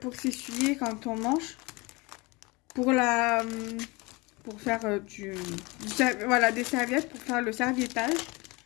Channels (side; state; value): right; quieter; 25.3 dB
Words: s'essuyer quand on mange. Pour faire voilà, des serviettes pour faire le serviettage.